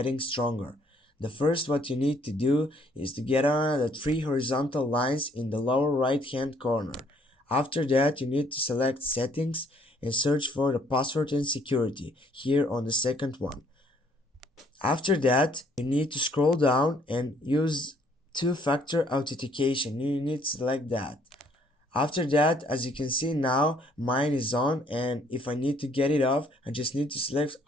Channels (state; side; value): normal; both; correlation 0.64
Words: stronger. The first what you need to do is to get on the three horizontal lines in the lower right hand corner. After that, you need to select Settings and search for the password and security here on the second one. After that, you need to scroll down and use two-factor authentication. You need to select that. After that, as you can see now, mine is on, and if I need to get it off, I just need to select